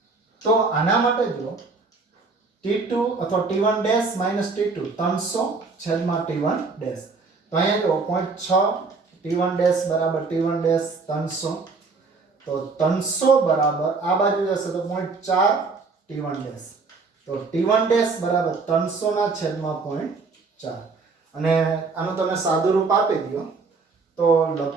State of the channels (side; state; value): left; quieter; 4.3 dB